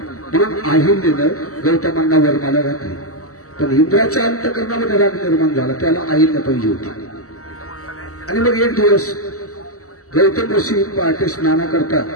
म्हणून अहिल्यानं गौतमांना वरमाला घातली. पण इंद्राच्या अंतकरणामध्ये राग निर्माण झाला. त्याला अहिल्या पाहिजे होती. आणि मग एक दिवस गौतम ऋषी पहाटे स्नाना करता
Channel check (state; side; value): late; right; 0.65 ms